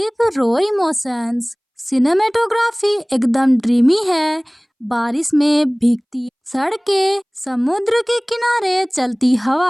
रो इमोशंस। सिनेमेटोग्राफी एकदम ड्रीमी है। बारिश में भीगती सड़कें, समुद्र के किनारे चलती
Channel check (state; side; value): identical; both; correlation 1.00